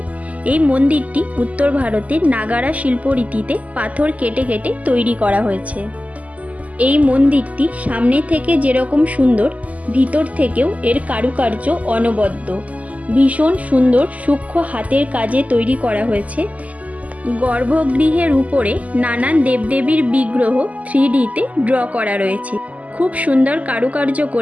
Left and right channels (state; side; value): late; left; 0.073 ms